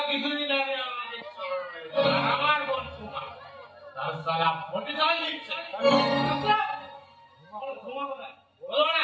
কিছুদিন আগে আমাদের আমার বোন সুমা তার সারা ফোটে যাওয়াই দিচ্ছে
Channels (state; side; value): identical; both; correlation 1.00